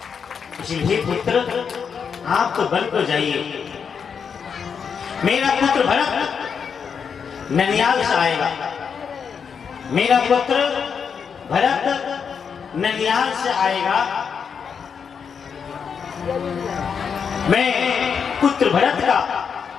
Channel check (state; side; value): quieter; right; 6.6 dB